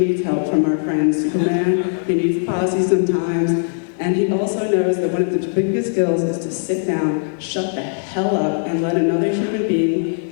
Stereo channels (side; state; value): right; silent; digital silence